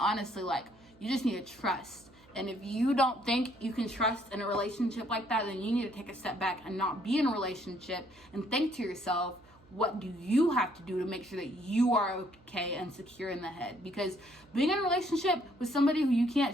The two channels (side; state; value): right; noise; hum, 27 dB below the sound